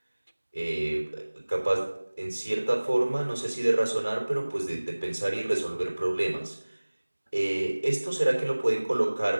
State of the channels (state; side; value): inverted; both; correlation -1.00